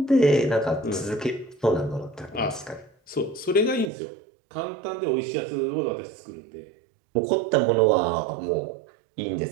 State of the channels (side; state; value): left; drops out; at 3.9 s